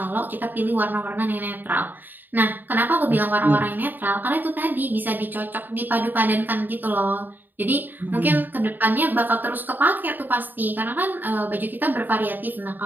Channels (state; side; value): late; left; 0.090 ms